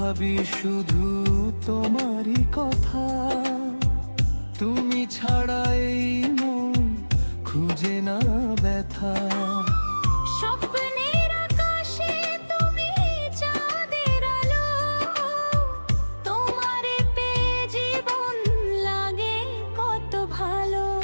ভাবি শুধু তোমারই কথা। তুমি ছাড়া এই মন খুঁজে না ব্যথা। স্বপ্নের আকাশে তুমি চাঁদের আলো, তোমারে পেয়ে জীবন লাগে কত ভালো।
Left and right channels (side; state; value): both; inverted; correlation -1.00